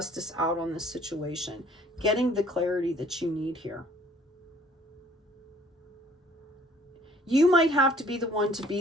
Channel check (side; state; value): both; normal; correlation 0.57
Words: out on this situation, getting the clarity that you need here. You might have to be the one to